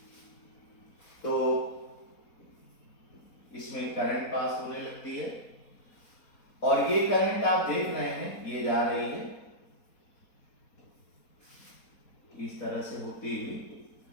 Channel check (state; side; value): late; right; 4.2 ms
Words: तो इसमें करंट पास होने लगती है और ये करंट आप देख रहे हैं ये जा रही है इस तरह से होती हुई,